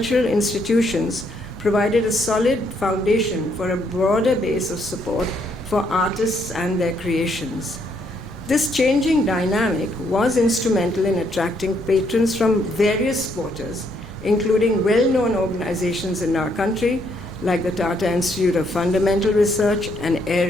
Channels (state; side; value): noise; left; rumble, 23 dB below the sound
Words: institutions provided a solid foundation for a broader base of support for artists and their creations. This changing dynamic was instrumental in attracting patrons from various quarters, including well-known organizations in our country, like the Tata Institute of Fundamental Research and